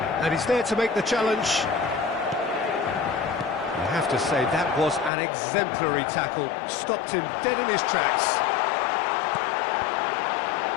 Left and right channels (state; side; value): drops out; right; at 5.1 s